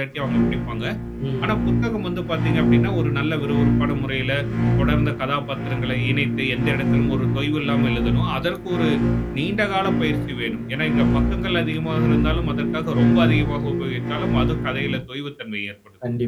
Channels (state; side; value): identical; both; correlation 1.00